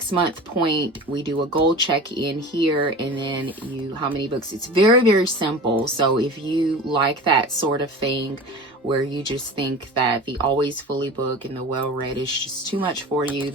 point, we do a goal check-in here, and then how many books. It's very, very simple. So if you like that sort of thing, where you just think that the always fully book and the well-read is just too much for you,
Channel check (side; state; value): both; normal; correlation 0.35